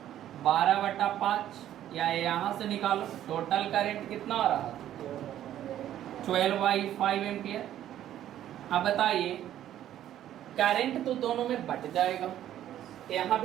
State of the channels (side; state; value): left; quieter; 11.8 dB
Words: 12/5, या यहाँ से निकालो टोटल करंट कितना आ रहा था 12/5 एम्पियर। अब बताइए करंट तो दोनों में बट जाएगा, यहाँ